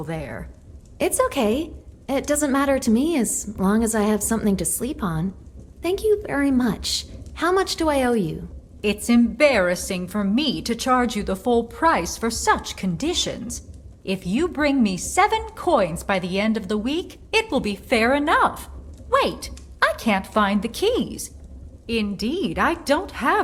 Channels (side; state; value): both; identical; correlation 1.00